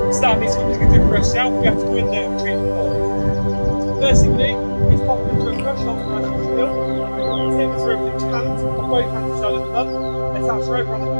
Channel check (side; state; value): both; inverted; correlation -1.00